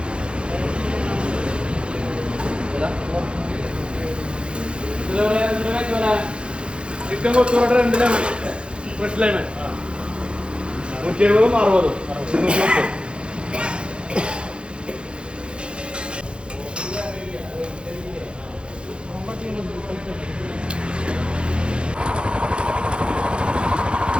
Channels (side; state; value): left; late; 0.055 ms